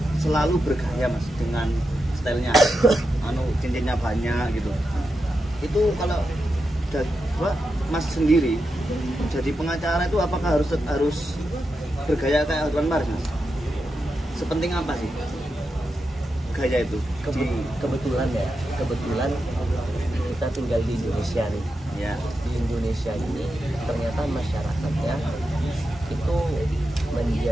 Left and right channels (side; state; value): both; normal; correlation 0.88